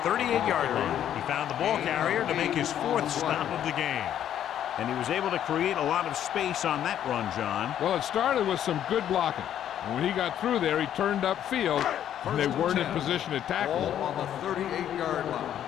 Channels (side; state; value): right; quieter; 10.5 dB